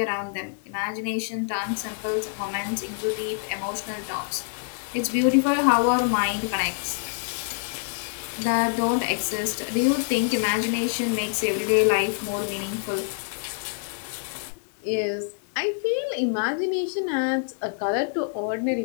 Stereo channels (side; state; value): right; silent; digital silence